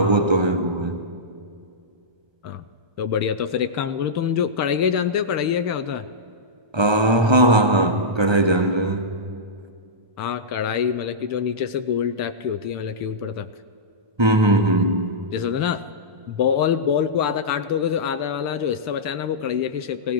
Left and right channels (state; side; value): late; left; 1.3 ms